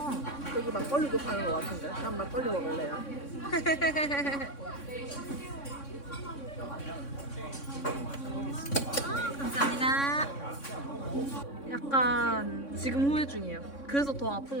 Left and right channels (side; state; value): right; late; 3.6 ms